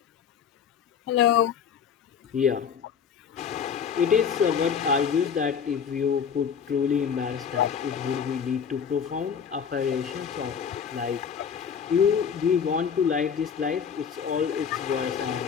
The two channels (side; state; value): right; quieter; 7.2 dB